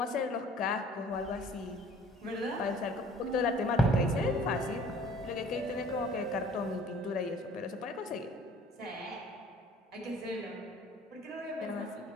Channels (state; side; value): normal; both; correlation 0.52